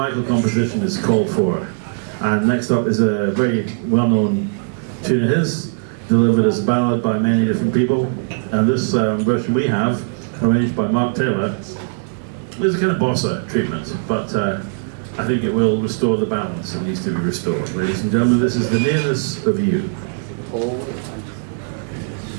composition is called for, and next up is a very well-known tune of his, delivered as a ballad by many different people, and this version we have, arranged by Mark Taylor, is a kind of bossa treatment, but I think it will restore the balance that needs to be restored. Ladies and gentlemen, this is The Nearness of You.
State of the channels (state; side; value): silent; left; digital silence